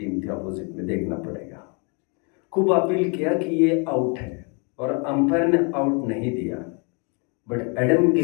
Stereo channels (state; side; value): quieter; right; 34.9 dB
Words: थी, अपोजिट में देखना पड़ेगा। खूब अपील किया कि ये आउट है, और अंपायर ने आउट नहीं दिया, but Adam